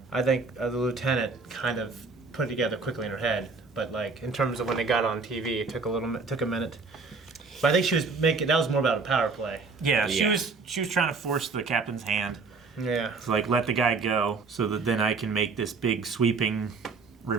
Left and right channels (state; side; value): quieter; left; 4.4 dB